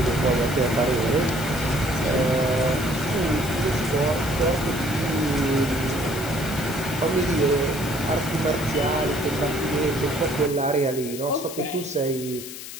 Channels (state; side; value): noise; left; hiss, 11 dB below the sound